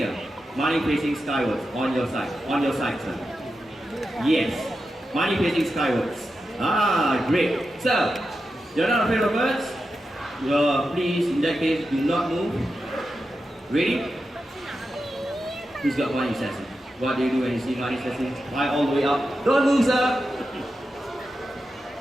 Money facing skywards on your side. On your side, sir. Yes. Money facing skywards. Ah, great. So, you're not afraid of birds? Please, in that case, do not move. Ready? Who's got money, Sassy? What do you do when you see money, Sassy? Fly all the way up. Don't move, sir.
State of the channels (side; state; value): both; normal; correlation 0.89